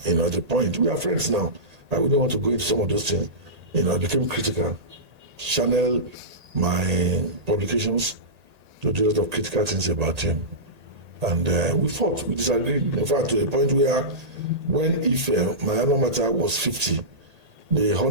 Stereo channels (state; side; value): late; left; 1.8 ms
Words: at the point, we are friends now. I wouldn't want to go into some of those things. I became critical, channel my publications to do a lot of critical things about him. And we fought, we disagreed. In fact, to the point where when my alma mater was 50, they